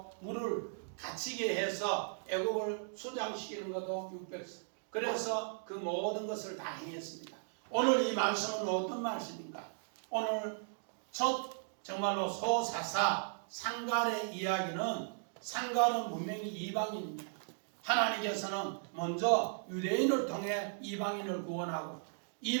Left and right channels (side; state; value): left; silent; digital silence